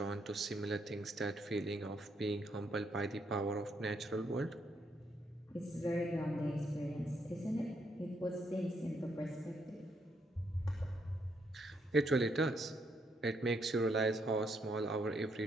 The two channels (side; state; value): both; normal; correlation 0.75